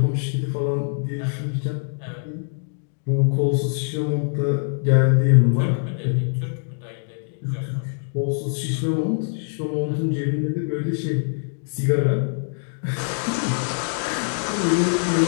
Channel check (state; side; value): silent; right; 63 dB below the other